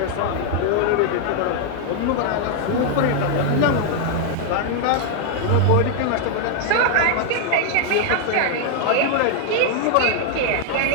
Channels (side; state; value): both; different; correlation 0.00